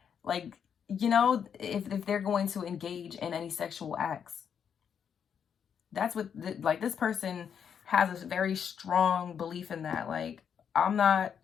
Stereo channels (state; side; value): quieter; right; 7.7 dB